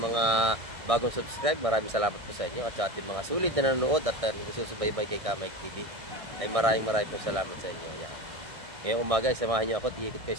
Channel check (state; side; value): late; left; 1.7 ms